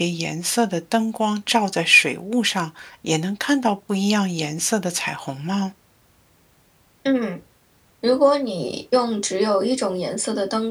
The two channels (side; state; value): both; identical; correlation 1.00